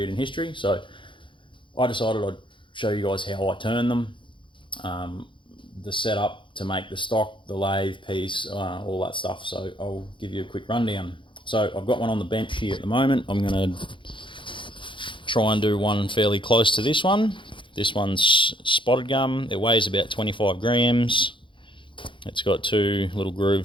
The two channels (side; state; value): right; late; 0.24 ms